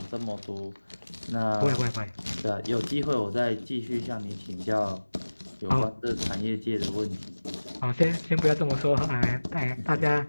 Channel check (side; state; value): both; inverted; correlation -1.00